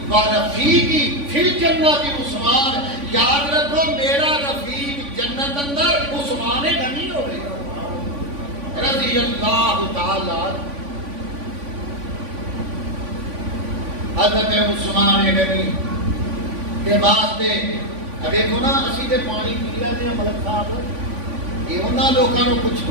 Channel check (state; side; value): late; left; 3.5 ms